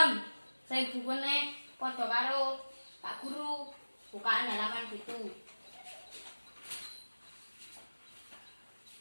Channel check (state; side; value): inverted; both; correlation -1.00